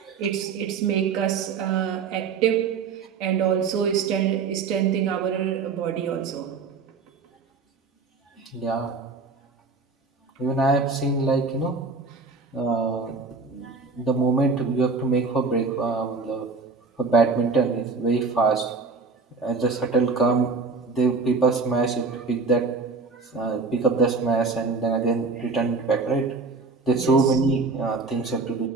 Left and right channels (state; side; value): quieter; left; 4.4 dB